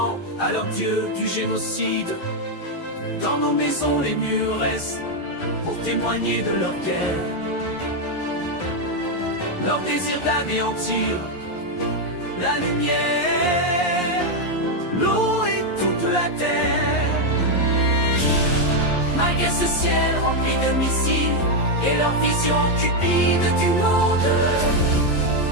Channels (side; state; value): right; late; 11 ms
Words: à leur dieu du génocide. Dans nos maisons les murs restent pour témoigner de leur guerre, leur désir d'anéantir la lumière, l'eau et toute la terre. Malgré ce ciel rempli de missiles et leur vision cupide du monde,